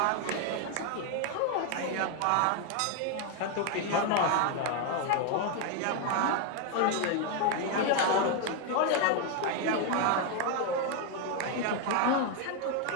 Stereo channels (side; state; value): both; different; correlation 0.01